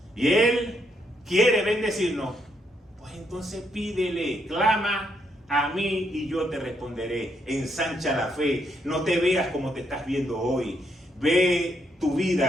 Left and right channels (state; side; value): normal; both; correlation 0.76